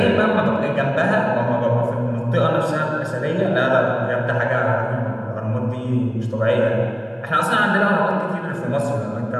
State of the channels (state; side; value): identical; both; correlation 1.00